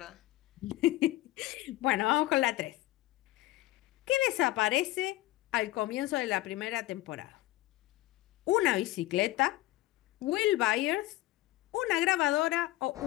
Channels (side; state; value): right; quieter; 17.5 dB